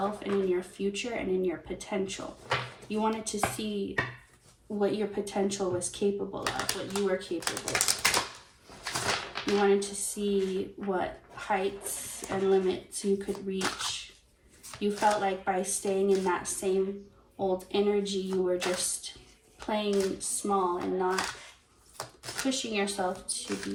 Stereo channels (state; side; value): identical; both; correlation 1.00